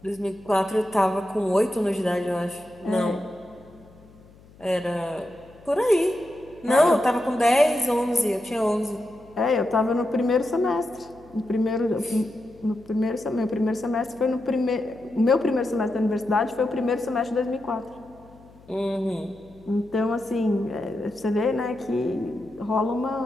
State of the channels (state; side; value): noise; left; hum, 25 dB below the sound